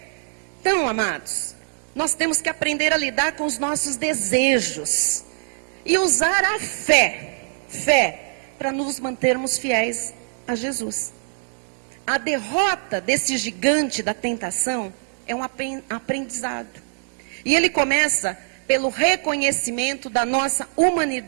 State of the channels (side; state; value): left; silent; 61 dB below the other